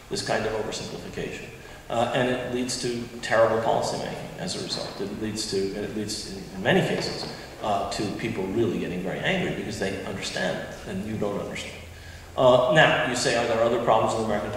this kind of oversimplification. And it leads to terrible policymaking as a result. It leads, in many cases, to people really getting very angry because they understand and you don't understand. Now, you say, are there other problems with American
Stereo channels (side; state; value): both; identical; correlation 1.00